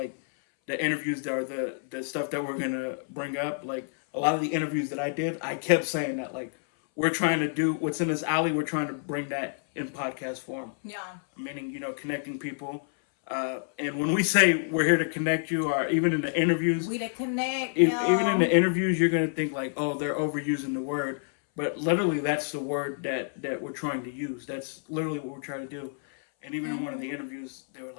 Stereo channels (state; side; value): silent; right; 59 dB below the other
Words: the interviews that are the stuff that we're going to bring up, like a lot of the interviews that I did, I kept saying that like we're trying to do what's in this alley, we're trying to bring that in podcast form. Yeah. Meaning, connecting people. And when we say we're here to connect you, or even in the interviews, we to connect. Even in the interviews, you're going to think like, oh, they're overusing the word. But literally, that's the word that we're trying to use. That's literally what we're trying to do. And even in one of the interviews, they were